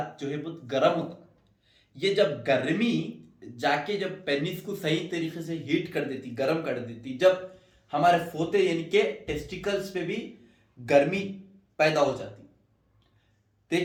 बहुत गर्म होता है, ये जब गर्मी जाके जब पेनिस को सही तरीके से हीट कर देती, गर्म कर देती, जब हमारे फोते यानी कि टेस्टिकल्स पे भी गर्मी पैदा हो जाती।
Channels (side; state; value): both; identical; correlation 1.00